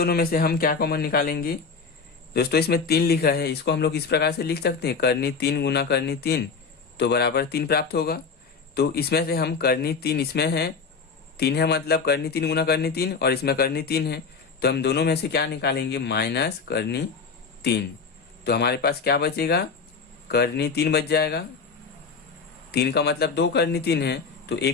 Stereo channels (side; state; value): right; quieter; 5.1 dB